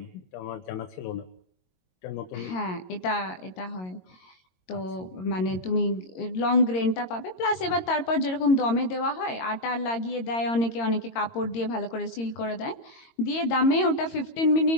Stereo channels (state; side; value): late; right; 22 ms